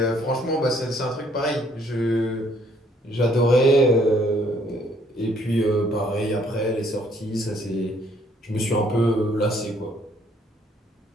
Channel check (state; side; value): normal; both; correlation 0.65